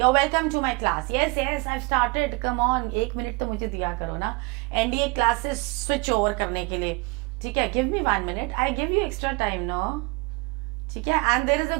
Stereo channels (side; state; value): left; quieter; 26.1 dB